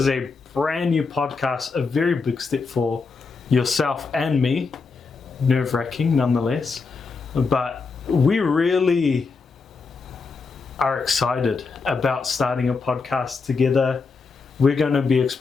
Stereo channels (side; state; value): right; quieter; 4.5 dB